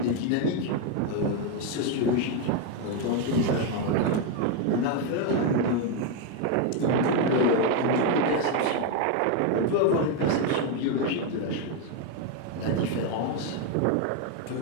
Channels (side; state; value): both; different; correlation 0.02